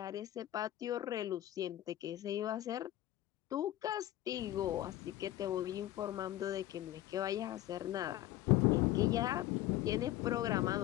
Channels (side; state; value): right; quieter; 14.4 dB